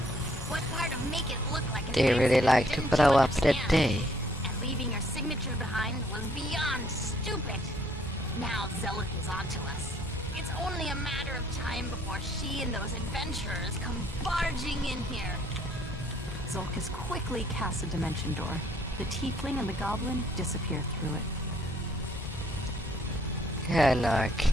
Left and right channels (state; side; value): normal; both; correlation 0.64